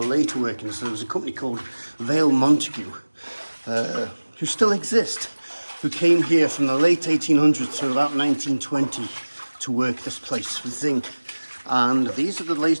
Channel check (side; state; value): both; inverted; correlation -1.00